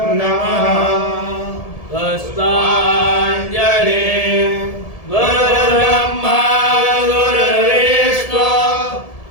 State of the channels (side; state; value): right; late; 1.7 ms